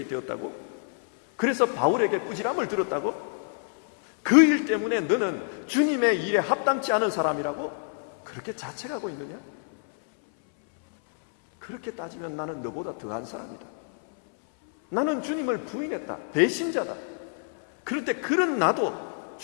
되었다고? 그래서 바울에게 꾸지람을 들었다고? 그 일 때문에 너는 주님의 일에 합당치 않은 사람이라고 그렇게 자책하고 있느냐? 그렇게 따지면 나는 너보다 더한 사람이다. 나는 주님을 부인했다. 배신자다. 그런데 그런 나도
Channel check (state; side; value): silent; right; 60 dB below the other